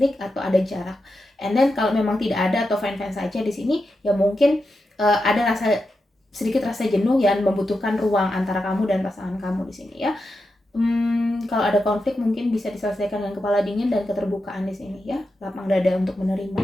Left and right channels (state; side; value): normal; both; correlation 0.88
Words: atau ada jarak, and then kalau memang tidak ada atau fine saja di sini ya, mungkin ada sedikit rasa jenuh yang membutuhkan ruang antara kamu dan pasangan kamu di sini ya. Kalau ada konflik mungkin bisa diselesaikan dengan kepala dingin dan keterbukaan di sini ya, lapang dada untuk menerima.